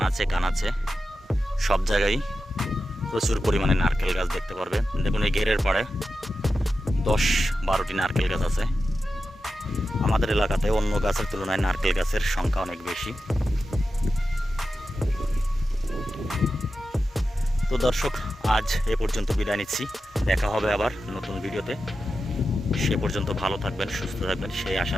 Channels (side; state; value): both; normal; correlation 0.91